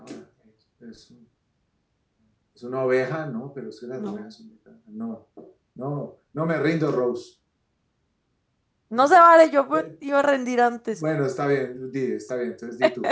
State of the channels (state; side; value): identical; both; correlation 1.00